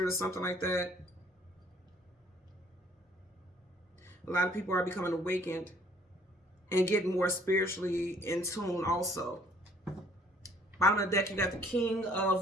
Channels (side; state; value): both; normal; correlation 0.60